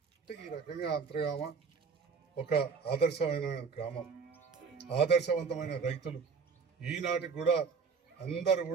అంటే ఈ రకంగా అంతర్గామ ఒక ఆదర్శమైన గ్రామం, ఆదర్శవంతమైన రైతులు. ఈనాటికి కూడా అందరూ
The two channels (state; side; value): quieter; left; 5.5 dB